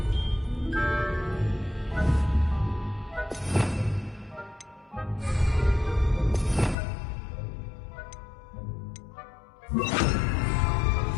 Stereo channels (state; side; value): drops out; right; at 6.8 s